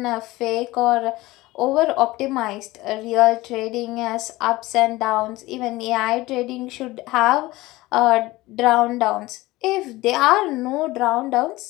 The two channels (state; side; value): quieter; right; 19.2 dB